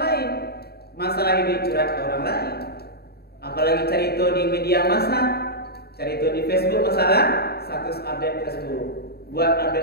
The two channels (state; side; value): late; right; 0.46 ms